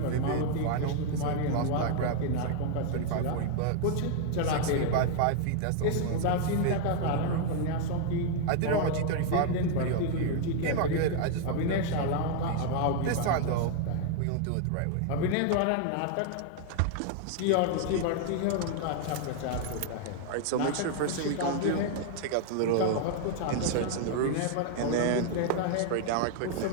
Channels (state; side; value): different; both; correlation 0.00